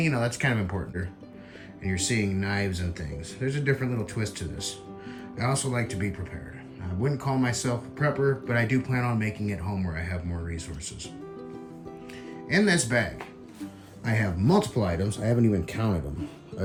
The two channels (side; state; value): both; identical; correlation 1.00